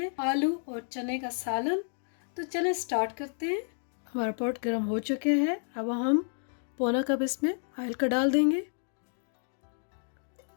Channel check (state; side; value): silent; right; digital silence